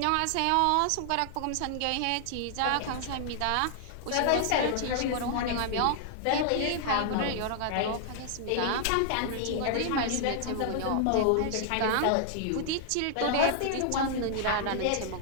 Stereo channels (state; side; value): different; both; correlation -0.01